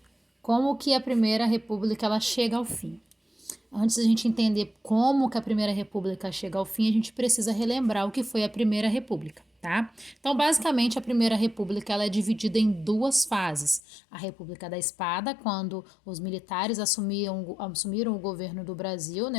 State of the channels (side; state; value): right; drops out; at 13.8 s